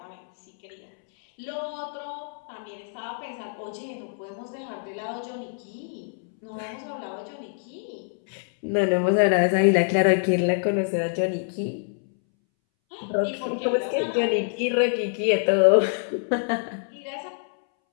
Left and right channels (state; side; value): silent; right; 61 dB below the other